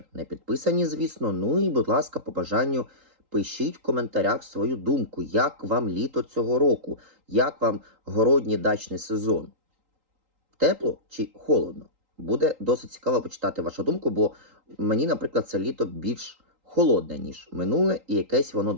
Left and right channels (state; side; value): late; left; 3.8 ms